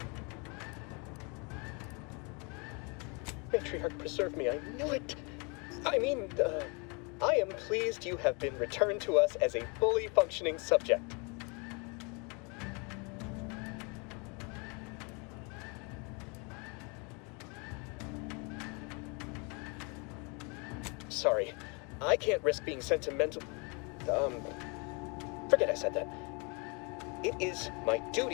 Matriarch, preserve me, I knew it! I mean, I am pleased you have been returned to us as a fully functioning subject. Sorry, I can't risk being sentimental. Forget I said that. It is my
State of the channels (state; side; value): quieter; right; 32.4 dB